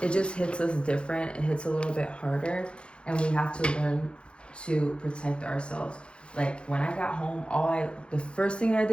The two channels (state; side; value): late; right; 0.056 ms